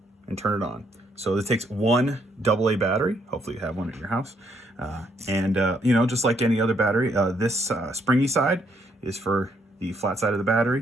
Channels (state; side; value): normal; both; correlation 0.72